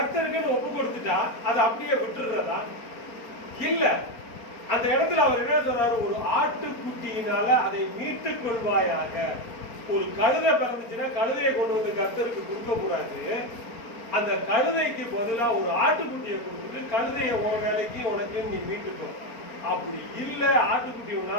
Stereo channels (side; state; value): right; late; 4.4 ms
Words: ஒப்பு கொடுத்துட்டா அதை அப்படியே விட்டுறதா? இல்ல. அந்த இடத்துல அவர் என்ன சொல்றாரு, ஒரு ஆட்டுக்குட்டியினால அதை மீட்டுக் கொள்வாயாக. ஒரு கழுதை பிறந்துச்சுன்னா கழுதையை கொண்டு வந்து கர்த்தருக்கு கொடுக்க கூடாது. அந்த கழுதைக்கு பதிலா ஒரு ஆட்டுக்குட்டியை கொடுத்துட்டு கழுதைய உன் வேலைக்கு உனக்கு நீ மீட்டுக்கோ. அப்படி இல்ல, ஆட்டுக்குட்டி